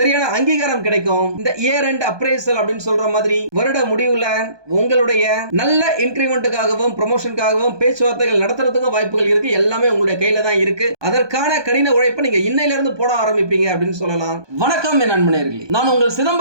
அங்கீகாரம் கிடைக்கும். இந்த இயர் எண்ட் அப்ரைசல் அப்படின்னு சொல்ற மாதிரி வருட முடிவுல உங்களுடைய நல்ல இன்கிரிமெண்ட்டுக்காகவும் ப்ரமோஷனுக்காகவும் பேச்சுவார்த்தைகள் நடத்துறதுக்கு வாய்ப்புகள் இருக்கு. எல்லாமே உங்களுடைய கையில தான் இருக்கு. அதற்கான கடின உழைப்பை நீங்க இன்னையில இருந்து போட ஆரம்பிப்பீங்க அப்படின்னு சொல்லலாம். வணக்கம் என் நண்பர்களே, நான் உங்கள்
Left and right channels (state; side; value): late; left; 1.2 ms